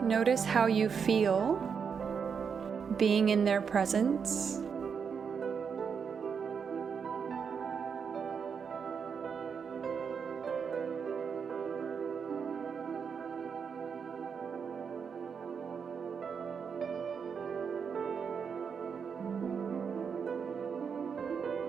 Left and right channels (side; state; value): left; quieter; 6.4 dB